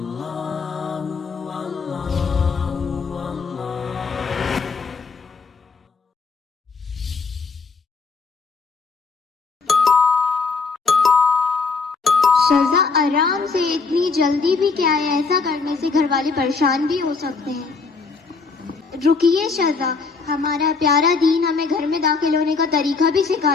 شذا آرام سے، اتنی جلدی بھی کیا ہے؟ ایسا کرنے سے گھر والے پریشان بھی ہو سکتے ہیں۔ رکیے شذا، ہمارا پیارا دین ہمیں گھر میں داخل ہونے کا طریقہ بھی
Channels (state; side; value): quieter; right; 4.6 dB